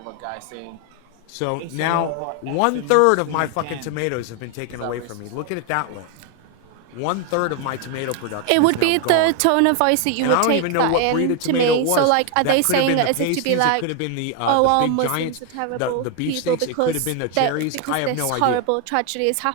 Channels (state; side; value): different; both; correlation 0.01